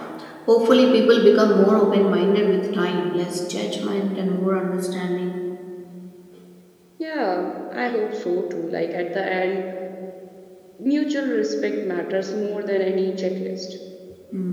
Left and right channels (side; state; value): both; identical; correlation 1.00